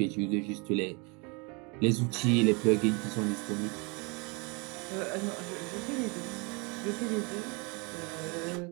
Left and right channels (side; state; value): left; quieter; 30.7 dB